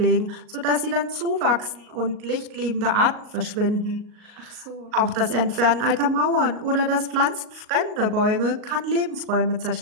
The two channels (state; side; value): late; left; 38 ms